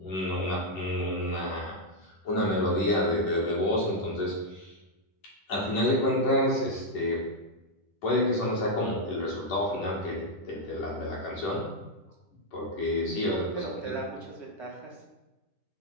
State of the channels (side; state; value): right; late; 10 ms